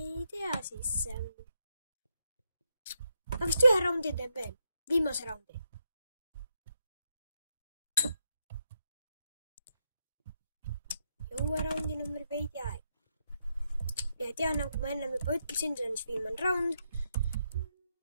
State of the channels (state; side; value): inverted; both; correlation -0.81